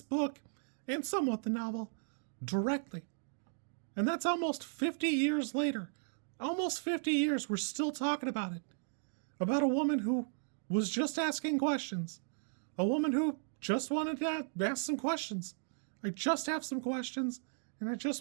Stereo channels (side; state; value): left; silent; digital silence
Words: book, and somewhat the novel, directly. And that's almost 50 years later. Almost 50 years, we're still talking about it. About a woman who was just asking questions. A woman who just wanted to ask some questions. I just have some questions, and I